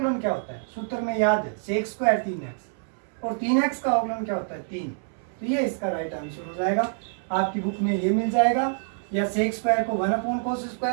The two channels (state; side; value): silent; left; 61 dB below the other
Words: क्या होता है? सूत्र में याद है, सेक स्क्वायर 3x, और 3x का अवकलन क्या होता है? 3। तो ये इसका राइट आंसर हो जाएगा। आपकी बुक में ये मिल जाएगा, या सेक स्क्वायर को 1 अपॉन कोस